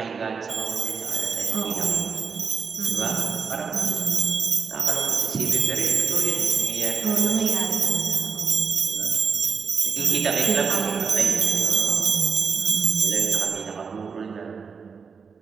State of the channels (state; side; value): quieter; left; 5.7 dB